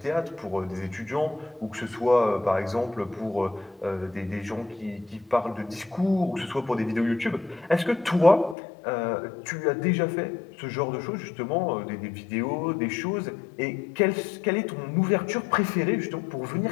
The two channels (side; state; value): right; drops out; at 8.6 s